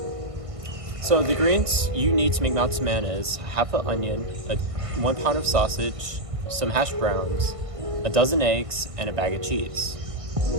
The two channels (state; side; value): late; left; 1.5 ms